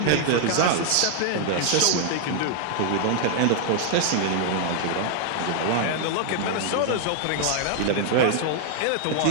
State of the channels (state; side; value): different; both; correlation 0.00